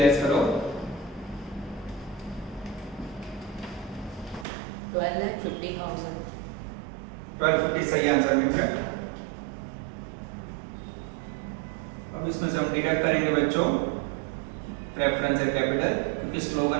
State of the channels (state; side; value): drops out; left; at 4.5 s